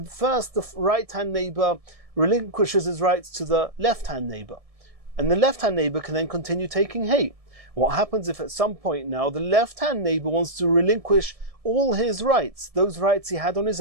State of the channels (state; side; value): late; left; 1.7 ms